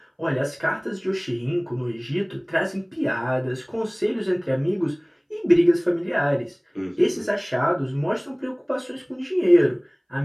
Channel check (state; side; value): identical; both; correlation 1.00